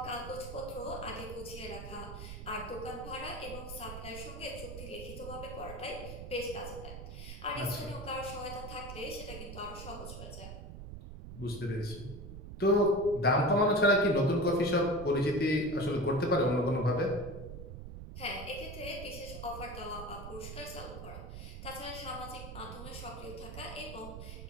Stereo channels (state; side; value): noise; right; rumble, 10 dB below the sound